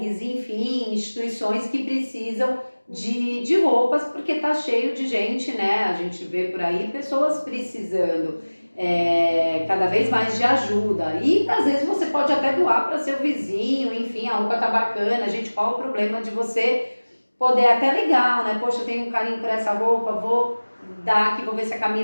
enfim, instituições que precisam de roupas, porque está cheio de gente, né? A gente vê por aí pessoas precisando cada vez mais de ajuda. E às vezes você pode até doar para seu vizinho, enfim, a roupa tá bacana, gente, qual o problema de você poder até legal, né? Poxa, eu tenho um carinho por essa roupa, vou dar aqui, vou ver se a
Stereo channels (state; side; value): inverted; both; correlation -1.00